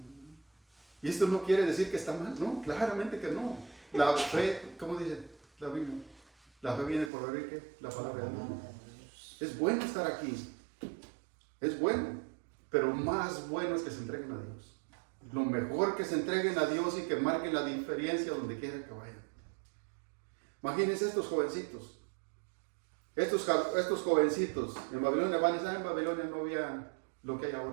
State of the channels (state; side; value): drops out; left; at 7.1 s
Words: Y esto no quiere decir que está mal, no, claramente que no. La fe, ¿cómo dice la Biblia? La fe viene por oír, ¿qué? La palabra de Dios. Es bueno estar aquí, es bueno, pero más bueno es que se entreguen a Dios. Lo mejor que se entreguen a Dios y que marquen la diferencia donde quiera que vayan. Imagínense estos jovencitos. Estos jovencitos en Babilonia van a en Babilonia no había lo que hay